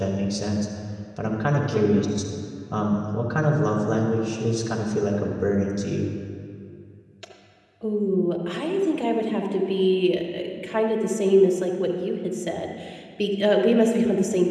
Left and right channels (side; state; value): both; identical; correlation 1.00